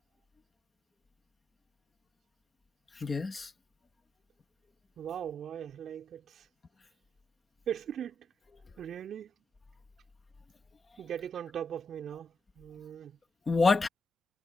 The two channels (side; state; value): both; normal; correlation 0.84